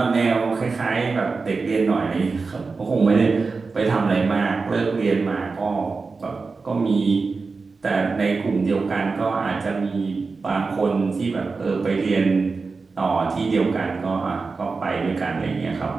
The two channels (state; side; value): quieter; left; 4.3 dB